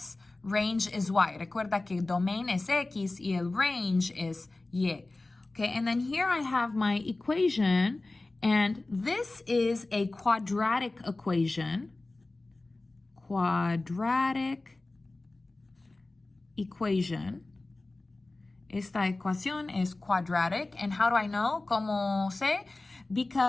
range is y. Recuerda que domain es x y el range is y. Okay, and then here I have my equation, and this is a quadratic equation. Quadratic equation. Esta ecuación es quadratic. And how do I know? ¿Cómo sé?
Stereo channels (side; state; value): right; quieter; 3.0 dB